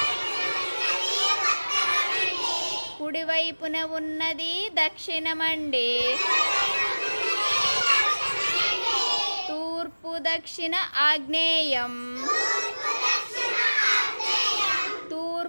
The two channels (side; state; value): both; inverted; correlation -1.00